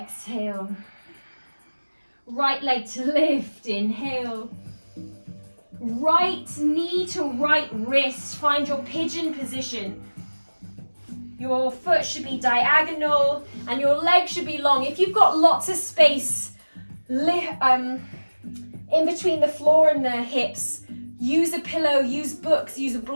Right leg to lift, inhale. Right knee to right wrist, find your pigeon position. Your foot should be diagonal and your leg should be long. If you've got lots of space in between the floor and the hips, Use a pillow, use books, use a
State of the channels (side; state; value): both; inverted; correlation -1.00